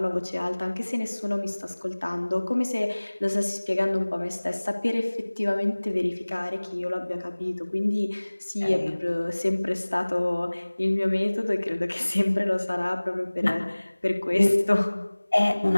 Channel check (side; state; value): both; inverted; correlation -1.00